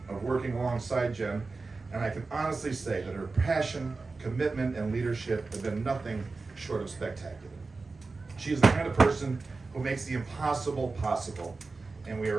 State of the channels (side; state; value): left; quieter; 3.9 dB